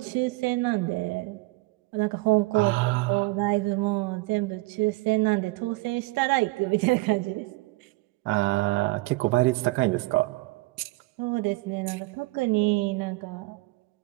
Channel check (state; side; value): quieter; left; 22.4 dB